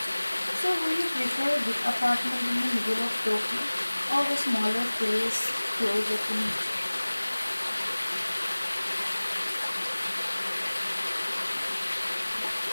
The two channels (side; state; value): both; inverted; correlation -1.00